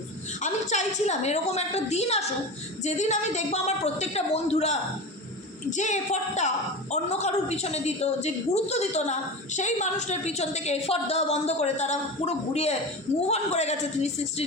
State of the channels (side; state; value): both; normal; correlation 0.27